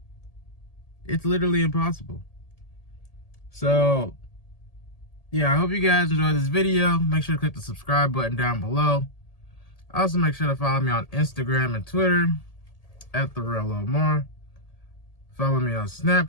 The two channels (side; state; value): right; late; 1.8 ms